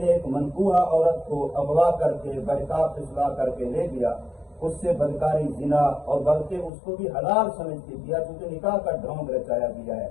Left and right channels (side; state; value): right; drops out; at 6.7 s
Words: ایک منکوحہ عورت کو اغوا کر کے بہتاب پھسلا کر کے لے گیا، اس سے بدکاری، زنا، اور بلکہ اس کو بھی حلال سمجھ کے دیا، کیونکہ نکاح کا ڈھونگ رچایا گیا ہے۔